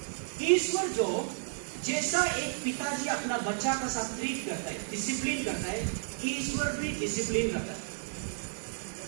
ईश्वर जो जैसा एक पिताजी अपना बच्चा का साथ ट्रीट करता है, डिसिप्लिन करता है, ईश्वर भी डिसिप्लिन करता है।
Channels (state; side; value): silent; left; 56 dB below the other